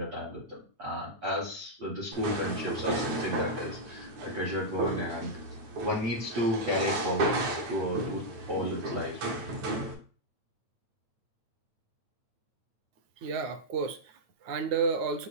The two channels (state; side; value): late; left; 9.4 ms